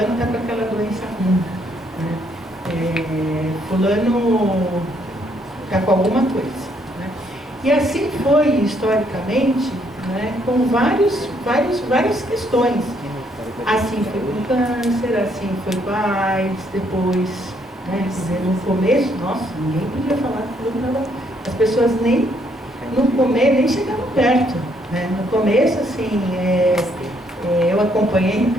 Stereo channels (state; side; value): normal; both; correlation 0.70